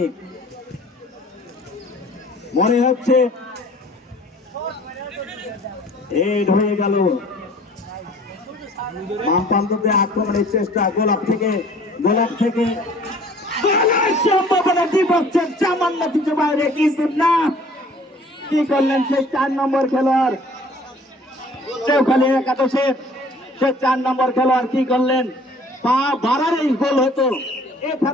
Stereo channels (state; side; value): normal; both; correlation 0.52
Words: মনে হচ্ছে হেড হয়ে গেল। বাম প্রান্ততে আক্রমণের চেষ্টা, গোলাপ থেকে গোলের সম্ভাবনা দ্বিপক্ষের সামান্য কিছু বাইরে, কিন্তু না, কি করলেন সেই 4 নম্বর খেলোয়াড় চৌখালি একাদশে, সে 4 নম্বর খেলোয়াড় কি করলেন, পা বাড়ারেই গোল হতো।